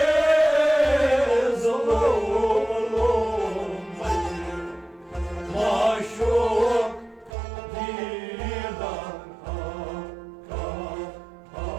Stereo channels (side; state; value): left; drops out; at 7.3 s